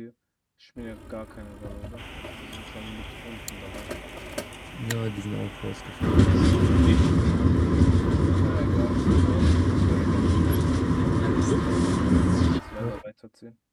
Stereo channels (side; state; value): both; identical; correlation 1.00